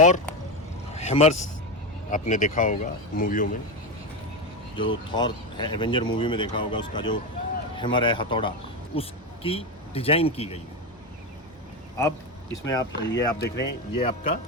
हैमर्स। आपने देखा होगा मूवियों में, जो थॉर है एवेंजर मूवी में देखा होगा, उसका जो हैमर है हथौड़ा, उसकी डिज़ाइन की गई है। अब इसमें आप देख रहे हैं, ये आपका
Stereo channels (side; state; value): both; normal; correlation 0.14